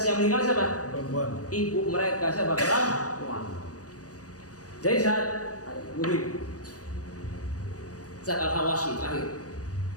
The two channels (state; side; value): late; right; 0.67 ms